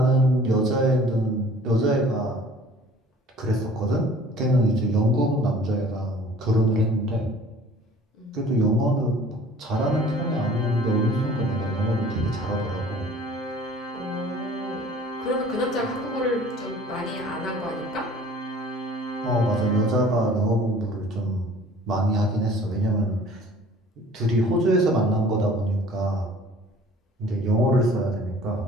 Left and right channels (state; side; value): normal; both; correlation 0.49